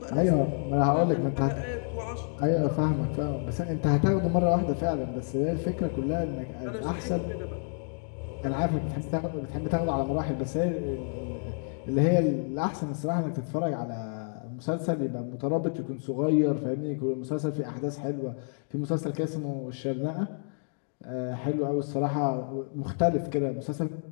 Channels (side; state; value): right; silent; 58 dB below the other